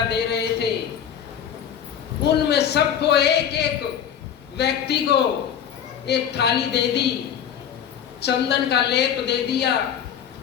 दे रहे थे उनमें सबको एक एक व्यक्ति को एक थाली दे दी, चंदन का लेप दे दिया,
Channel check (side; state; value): right; quieter; 8.9 dB